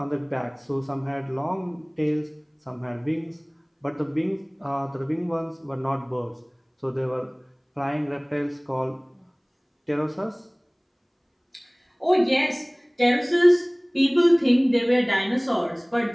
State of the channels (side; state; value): both; identical; correlation 1.00